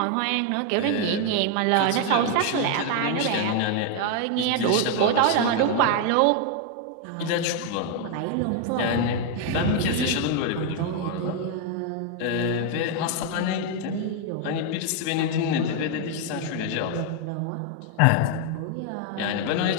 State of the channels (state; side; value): different; both; correlation 0.01